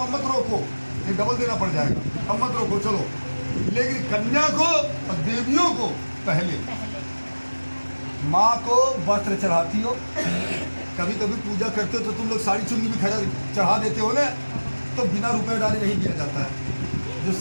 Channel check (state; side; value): inverted; both; correlation -1.00